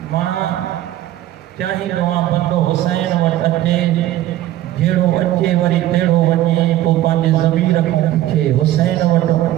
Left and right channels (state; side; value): quieter; left; 13.7 dB